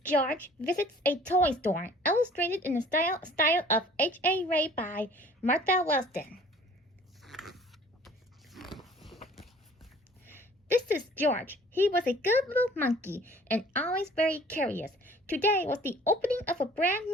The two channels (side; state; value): both; normal; correlation 0.51